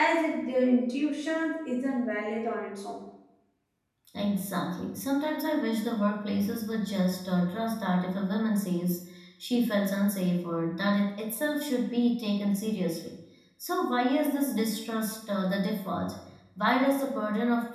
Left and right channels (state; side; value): identical; both; correlation 1.00